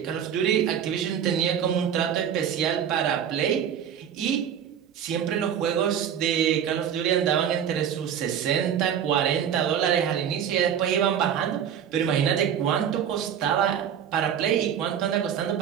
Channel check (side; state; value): left; quieter; 8.9 dB